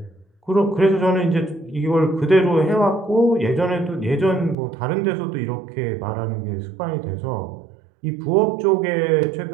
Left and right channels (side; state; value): left; drops out; at 4.5 s